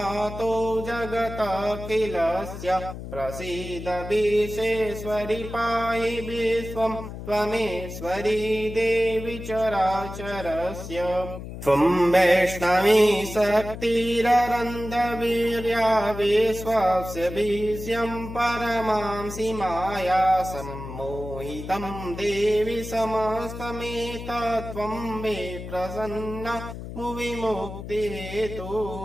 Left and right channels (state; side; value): noise; left; hum, 10 dB below the sound